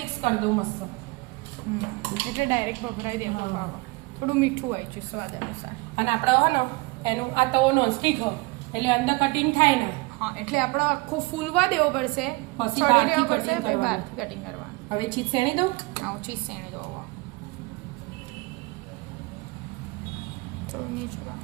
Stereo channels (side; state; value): left; quieter; 25.0 dB